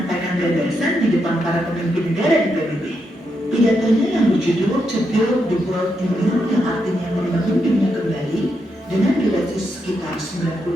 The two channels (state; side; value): normal; both; correlation 0.82